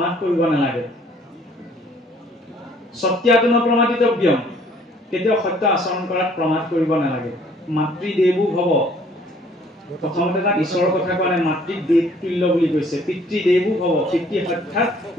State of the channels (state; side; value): normal; both; correlation 0.59